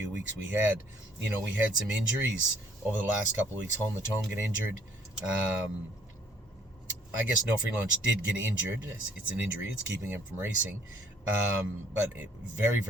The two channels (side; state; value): both; normal; correlation 0.62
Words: weeks we had. We had some injuries over the last couple of weeks. Home the Tone get injured. I guess No Free Lunch did get injured. It's an injury. It's keeping him from racing. But very,